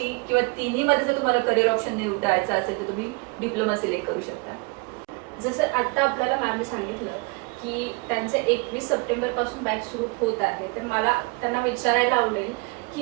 किंवा तिन्हीमध्ये जर तुम्हाला करिअर ऑप्शन निवडायचं असेल तर तुम्ही डिप्लोमा सिलेक्ट करू शकता. जसं आता आपल्याला मॅमने सांगितलं की त्यांचे 21 सप्टेंबर पासून बॅच सुरू होत आहे, तर मला त्यांना विचारायला आवडेल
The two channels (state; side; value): quieter; left; 28.6 dB